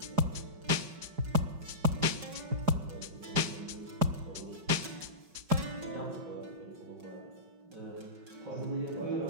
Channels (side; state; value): left; late; 5.0 ms